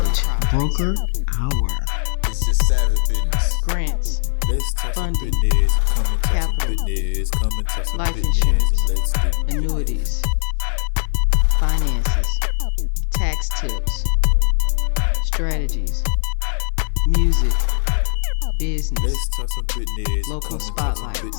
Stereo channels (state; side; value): silent; right; 58 dB below the other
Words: Broker Hour. It's just savage business. Grants, funding, capital, life insurance, annuities, finances, tax tips, strategies, music, business, local spotlights,